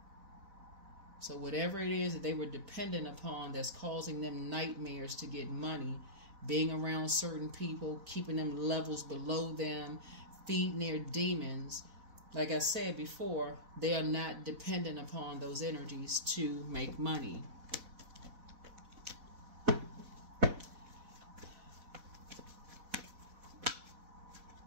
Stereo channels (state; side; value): late; left; 4.1 ms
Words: So whatever it is that they were dependent upon that's causing them nightmares to get money, being around certain people, keeping them levels below them, feeding their demons, like I said before, they are not dependent upon those energies to make money.